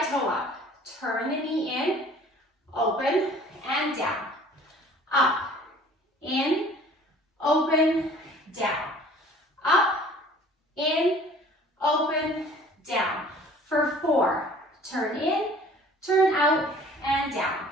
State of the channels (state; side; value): normal; both; correlation 0.50